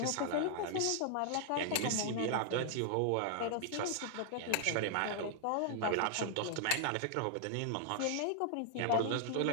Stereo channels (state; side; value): different; both; correlation -0.01